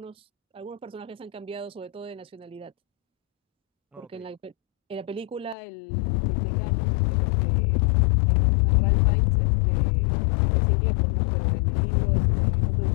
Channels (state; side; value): drops out; right; at 5.6 s